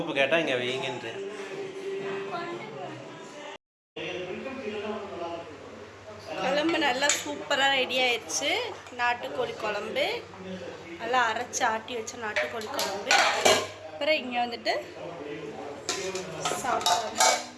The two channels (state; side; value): identical; both; correlation 1.00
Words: கேட்டால் இங்கே வைங்கன்றேன். குழம்பு நல்லா சூப்பராக ரெடி ஆயிடுச்சு. நாட்டுக்கோழி குழம்பு நல்லா அரைச்சி ஆட்டி வச்ச நாட்டுக்கோழி குழம்பு. அப்புறம் இங்கே வந்துட்டு